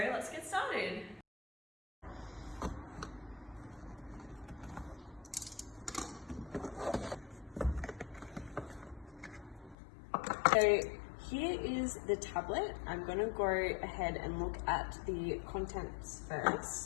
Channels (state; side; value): drops out; right; at 9.8 s